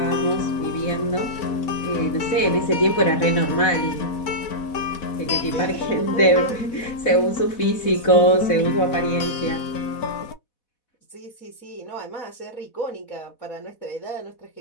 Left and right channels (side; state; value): right; late; 4.1 ms